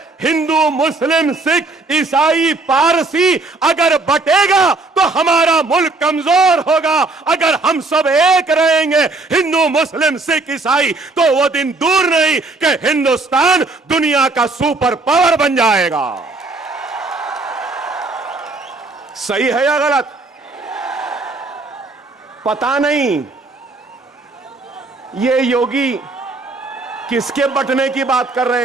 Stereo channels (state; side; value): quieter; left; 3.4 dB